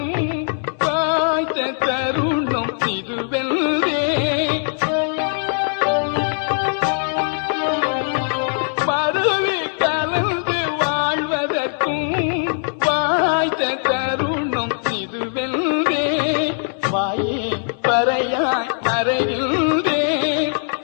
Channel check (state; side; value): silent; right; 65 dB below the other